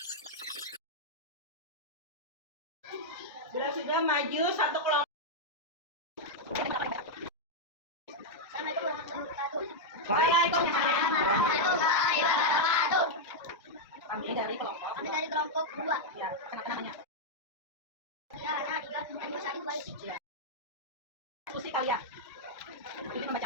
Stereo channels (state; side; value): normal; both; correlation -0.02